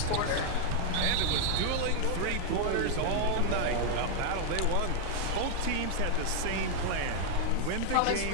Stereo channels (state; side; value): different; both; correlation 0.00